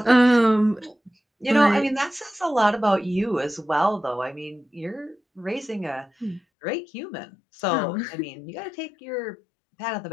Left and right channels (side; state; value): right; drops out; at 6.4 s